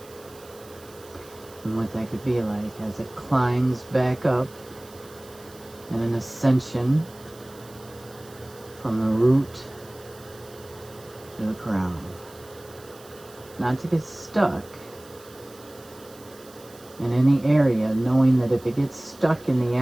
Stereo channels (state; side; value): noise; right; hiss, 23 dB below the sound